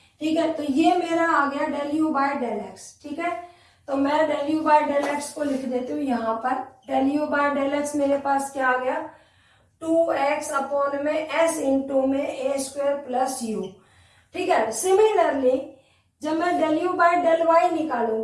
ठीक है। तो ये मेरा आ गया del U by del X, ठीक है। तो मैं del U by del X को लिख देती हूँ यहाँ पर, del U by del X मेरे पास क्या आ गया 2x अपॉन में s इंटू में ए स्क्वायर प्लस यू, ठीक है। सिमिलरली जब मैं del U by del Y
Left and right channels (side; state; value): both; identical; correlation 1.00